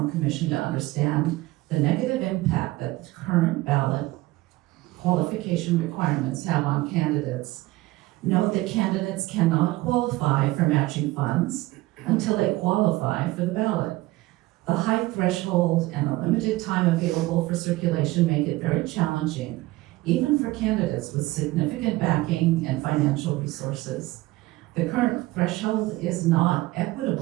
Commission to understand the negative impact that the current ballot qualification requirements have on candidates. Note that candidates cannot qualify for matching funds until they qualify for the ballot. The high threshold and the limited time available for circulation make it very challenging, even for candidates with significant backing and financial resources. The current threshold is not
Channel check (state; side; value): quieter; left; 19.2 dB